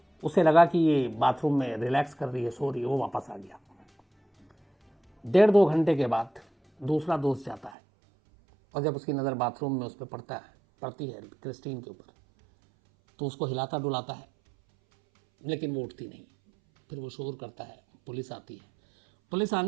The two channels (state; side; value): drops out; left; at 7.8 s